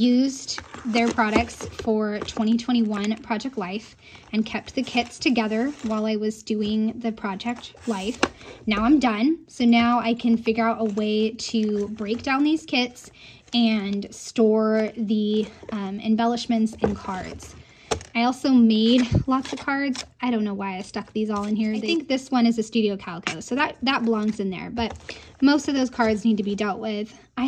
their products for 2021 Project Life and kept the kits together while I was doing the Project Life. Now I'm done, so now I can figure out a way to break down these kits and store the embellishments and cards. I also made lots of cards. I don't know why I stuck these all in here. I think this one is a Studio Calico, so that belongs in there, but most of those cards need to be dealt with. I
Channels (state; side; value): identical; both; correlation 1.00